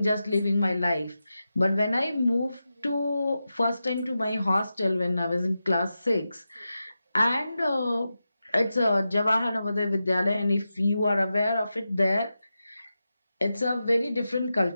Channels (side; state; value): both; inverted; correlation -0.91